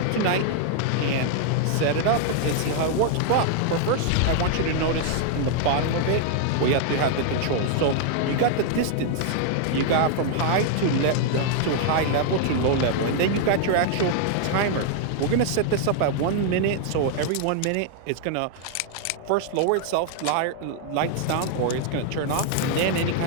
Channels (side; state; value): both; different; correlation 0.00